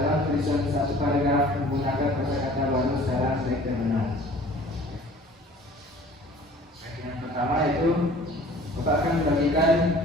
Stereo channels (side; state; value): both; normal; correlation 0.49